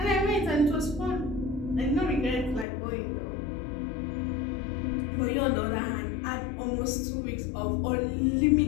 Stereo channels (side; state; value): right; drops out; at 2.7 s